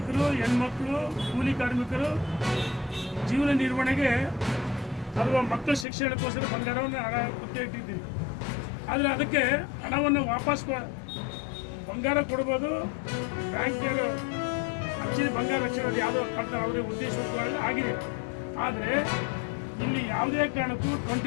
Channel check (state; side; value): drops out; right; at 5.9 s